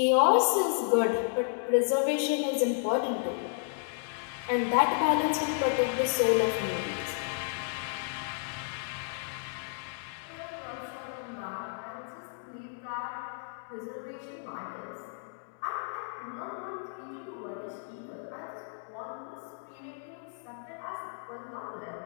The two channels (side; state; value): right; silent; digital silence